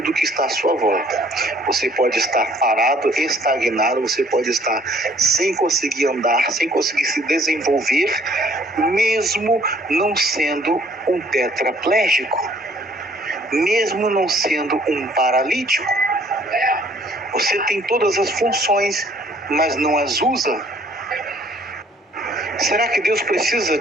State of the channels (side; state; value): both; normal; correlation 0.60